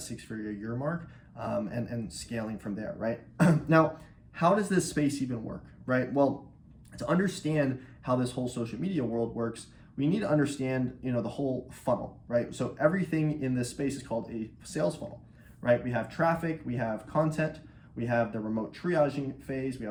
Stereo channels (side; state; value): both; identical; correlation 1.00